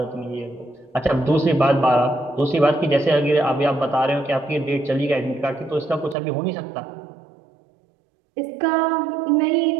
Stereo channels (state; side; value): drops out; left; at 6.2 s